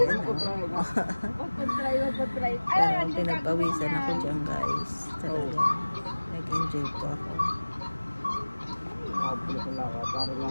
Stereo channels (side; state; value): both; inverted; correlation -1.00